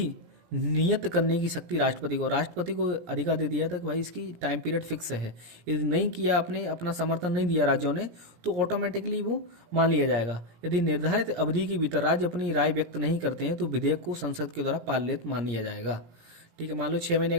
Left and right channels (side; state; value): left; late; 17 ms